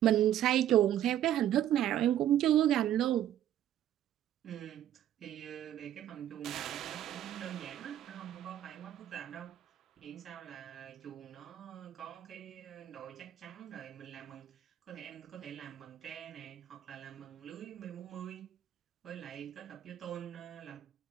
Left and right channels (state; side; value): quieter; left; 11.5 dB